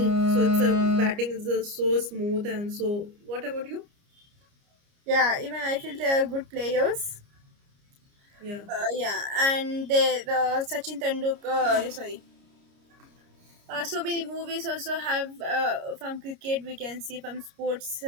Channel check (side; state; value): left; late; 29 ms